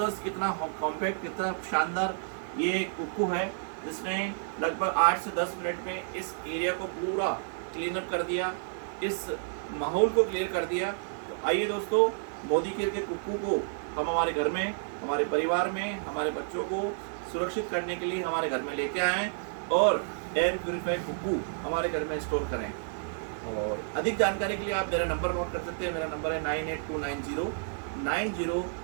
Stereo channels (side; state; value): left; silent; digital silence